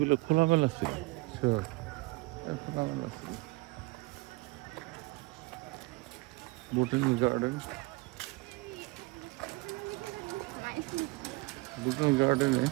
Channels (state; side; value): quieter; left; 22.9 dB